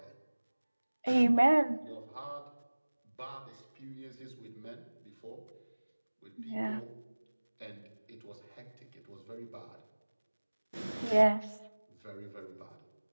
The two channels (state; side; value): inverted; both; correlation -1.00